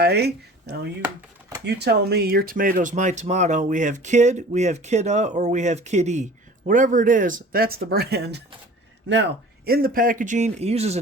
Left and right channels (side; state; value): both; normal; correlation 0.44